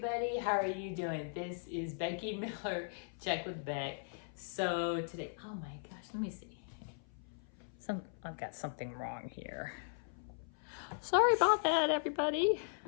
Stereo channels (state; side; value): silent; right; 52 dB below the other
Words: How are you doing? This is Becky Miller, Check with Beck. So today, oh my gosh, let me see. I've got something wrong here. Sorry about that, everybody.